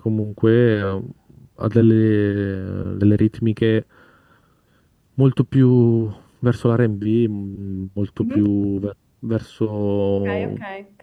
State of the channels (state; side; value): identical; both; correlation 1.00